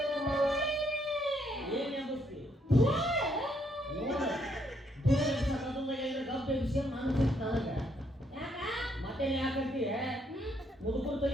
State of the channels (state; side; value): normal; both; correlation 0.72